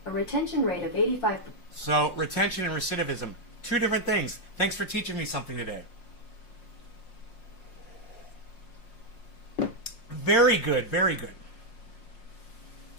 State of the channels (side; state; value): right; late; 5.6 ms